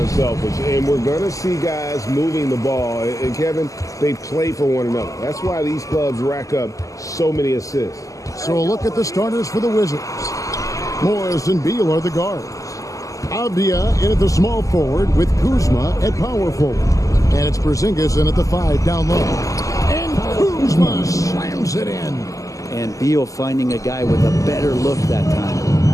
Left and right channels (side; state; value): right; late; 0.16 ms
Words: And we're going to see guys moving the ball. And, Kevin, they play for one another. That's why these clubs rack up so many assists. So a look at the starters for the Wizards. Morris and Beal are the guards. Avdia in at the small forward with Kuzma at power forward. And it's Porzingis in at the 5 down low. And Kuzma slams it in. And Beal finding a guy with a better look that time.